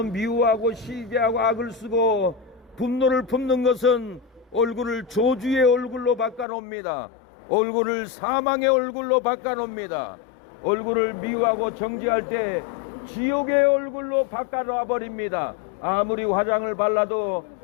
미워하고 시기하고 악을 쓰고 분노를 품는 것은 얼굴을 저주의 얼굴로 바꿔놓습니다. 얼굴을 사망의 얼굴로 바꿔놓습니다. 얼굴을 미워하고 정죄할 때 지옥의 얼굴로 바꿔놔 버립니다. 아무리 화장을 발라도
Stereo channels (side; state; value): right; drops out; at 6.5 s